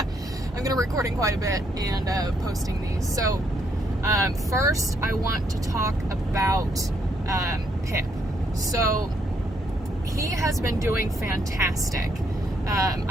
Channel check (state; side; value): normal; both; correlation 0.73